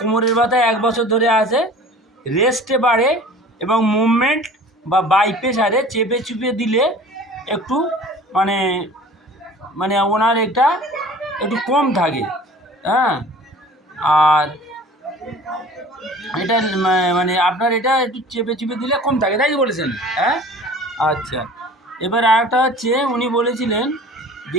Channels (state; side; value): normal; both; correlation 0.44